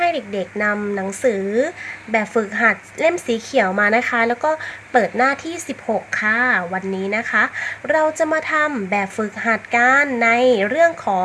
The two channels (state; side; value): identical; both; correlation 1.00